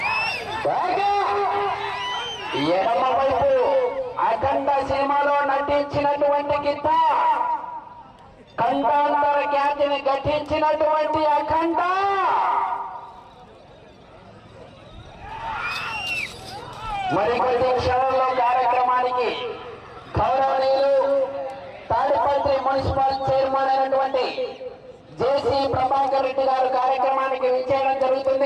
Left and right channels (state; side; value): identical; both; correlation 1.00